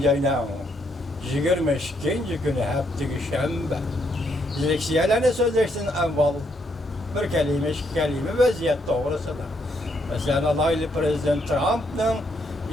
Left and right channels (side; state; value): both; normal; correlation 0.74